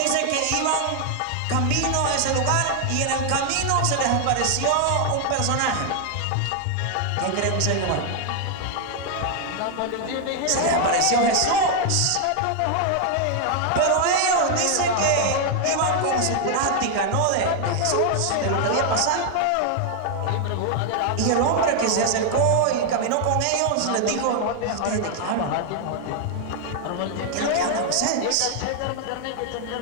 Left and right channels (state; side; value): different; both; correlation 0.00